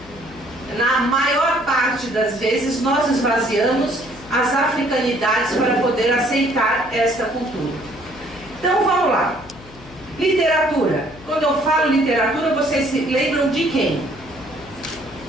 na maior parte das vezes, nós esvaziamos as africanidades para poder aceitar esta cultura. Então vamos lá. Literatura. Quando eu falo literatura, vocês se lembram de quem?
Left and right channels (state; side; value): noise; left; hum, 20 dB below the sound